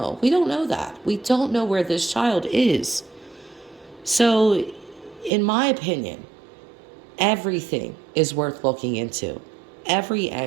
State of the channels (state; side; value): drops out; left; at 5.3 s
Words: We don't know that. We don't know where this child is. So, in my opinion, everything is worth looking into. Every